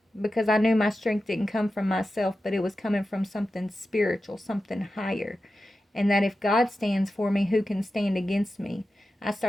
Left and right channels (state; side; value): normal; both; correlation 0.92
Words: because I knew my strength didn't come from myself, but it was coming from something spiritual, something higher. And that if God stands for me, who can stand against me? I